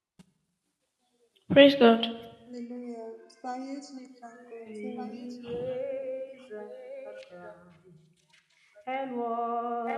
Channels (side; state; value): both; identical; correlation 1.00